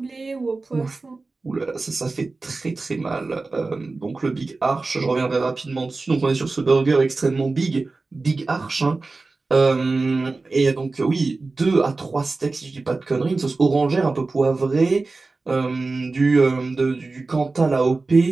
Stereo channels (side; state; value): left; quieter; 3.6 dB